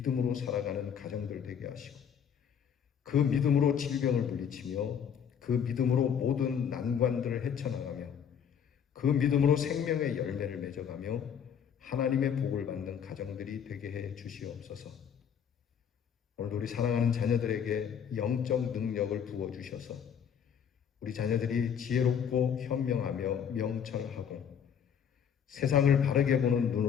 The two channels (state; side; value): quieter; right; 8.0 dB